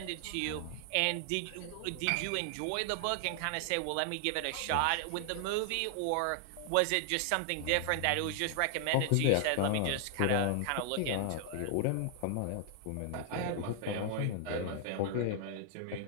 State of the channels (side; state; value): both; different; correlation 0.00